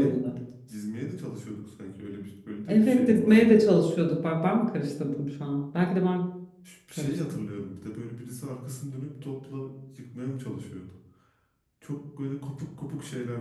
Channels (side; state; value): both; identical; correlation 1.00